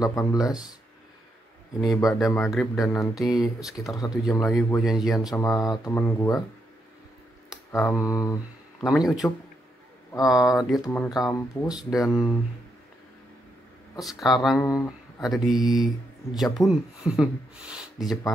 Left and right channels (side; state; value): both; normal; correlation 0.80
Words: Ini ba'da maghrib dan nanti sekitar 1 jam lagi gue janjian sama temen gue. Namanya Ucup. Dia teman kampus dan sekarang ada di Japun, di